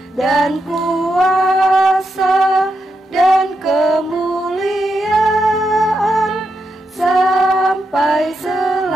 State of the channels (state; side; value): normal; both; correlation 0.84